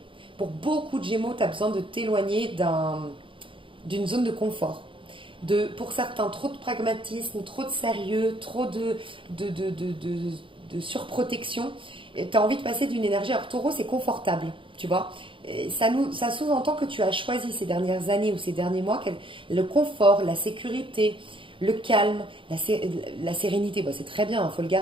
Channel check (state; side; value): late; left; 0.25 ms